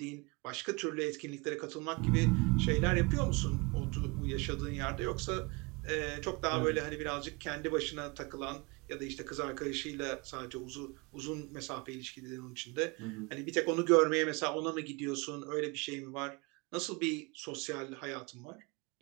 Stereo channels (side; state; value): left; quieter; 27.9 dB